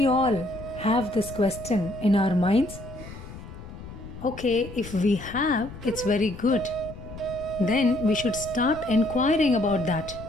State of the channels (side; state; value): left; noise; rumble, 14 dB below the sound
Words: all have this question in our minds? Okay, if we have, it's very good. Then we should start inquiring about that.